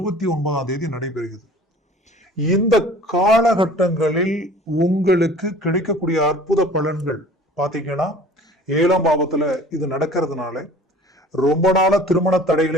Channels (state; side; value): normal; both; correlation 0.46